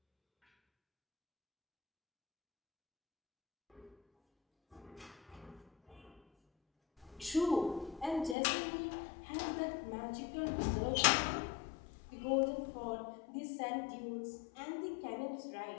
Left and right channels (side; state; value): right; drops out; at 8.3 s